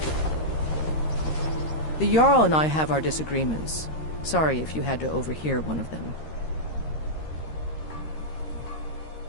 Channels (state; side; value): late; right; 13 ms